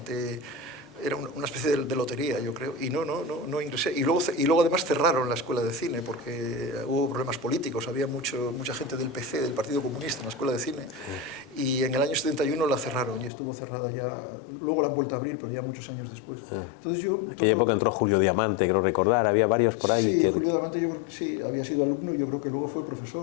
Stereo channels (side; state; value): right; drops out; at 13.3 s